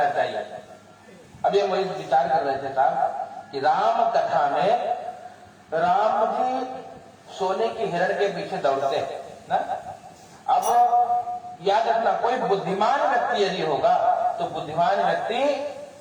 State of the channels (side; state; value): both; identical; correlation 1.00